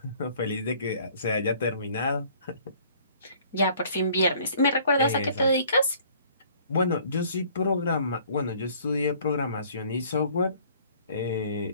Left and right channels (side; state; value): both; inverted; correlation -0.56